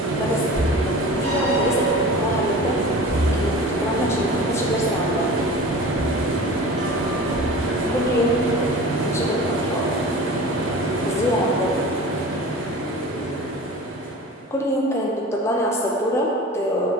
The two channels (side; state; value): both; normal; correlation 0.37